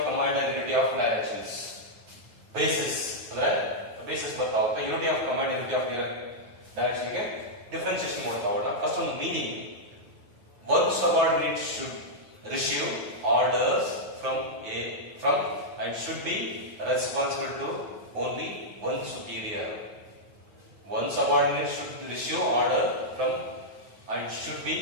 command and unity of directions. Basis ಅಂದ್ರೆ ಬೇಸಿಸ್ ಬರ್ತಾ ಹೋಗ್ತಾ. Unity of command, unity of direction ಗೆ ಡಿಫರೆನ್ಸಿಯೇಷನ್ ಮಾಡ್ತಾ ಹೋಗೋಣ. ಫಸ್ಟ್ ಒಂದು meaning. One subordinate should receive orders from and should be responsible to only one superior. One subordinate should receive order from and should be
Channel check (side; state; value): left; late; 9.4 ms